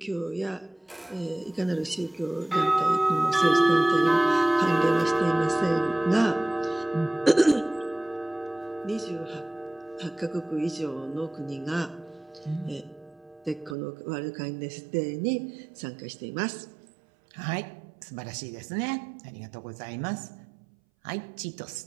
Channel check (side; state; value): left; drops out; at 13.8 s